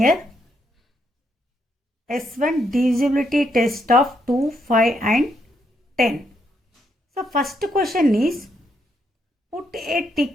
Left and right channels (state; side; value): normal; both; correlation 0.77